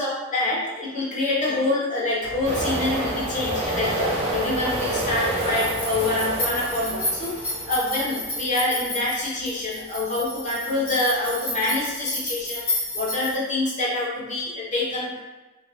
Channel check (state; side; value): normal; both; correlation 0.06